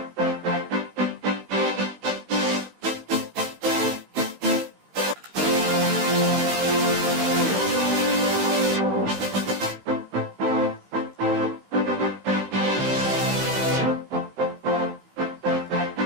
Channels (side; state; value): left; late; 16 ms